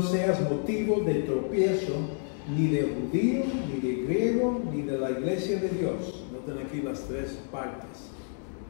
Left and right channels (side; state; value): right; silent; 58 dB below the other